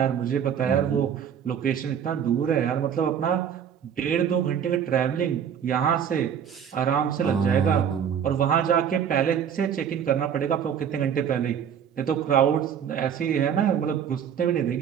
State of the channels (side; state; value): left; quieter; 8.3 dB